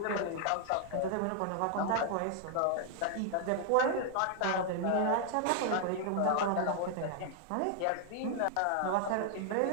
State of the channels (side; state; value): both; different; correlation 0.00